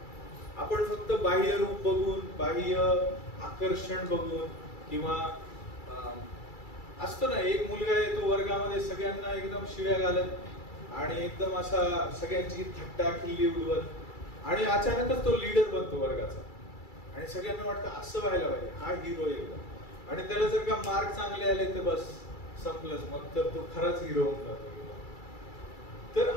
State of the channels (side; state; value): right; late; 2.3 ms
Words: आपण फक्त बाह्य रूप बघून, बाह्य आकर्षण बघून, किंवा असतो ना एक मुलगा येतो वर्गामध्ये सगळ्यांना एकदम शिव्या घालत आणि एकदम असा सगळ्यांची थट्टा खिल्ली उडवत, आणि अचानकच तो लीडर बनतो वर्गाचा आणि सगळ्यांना वाटतं असं व्हायला पाहिजे, हा हिरो एकदम. आणि त्याला जर का मार्क चांगले आले तर बस संपलंच, मग तर तो खराच हिरो होऊन जातो. तर